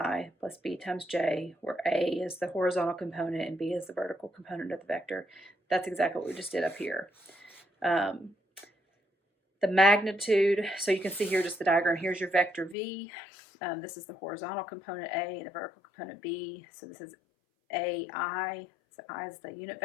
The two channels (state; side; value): drops out; right; at 12.8 s